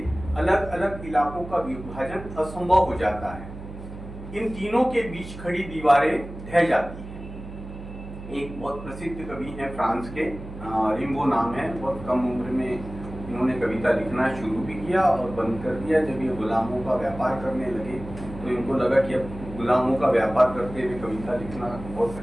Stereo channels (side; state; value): right; noise; hum, 12 dB below the sound